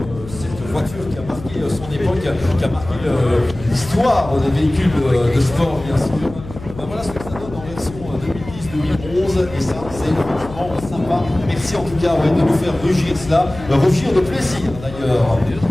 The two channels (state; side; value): noise; left; hum, 14 dB below the sound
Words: cette voiture qui a marqué son époque, qui a marqué l'histoire des véhicules de sport, bien sûr. Ben voilà ce que ça donne en version 2010-2011, et ça, c'est franchement sympa. Merci en tout cas de nous faire rugir cela, rugir de plaisir d'ailleurs.